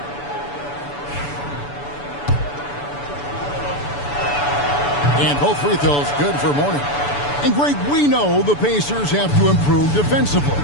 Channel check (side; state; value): right; late; 6.9 ms